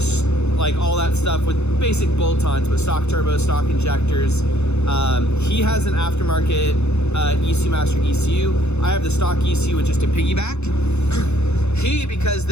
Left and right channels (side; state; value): right; late; 0.81 ms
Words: like all that stuff with basic bolt-ons, but stock turbos, stock injectors. He has an aftermarket ECU Master ECU. I have the stock ECU with just a piggyback. He, because